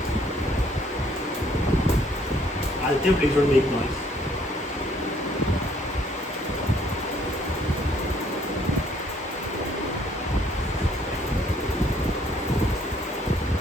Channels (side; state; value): both; normal; correlation 0.64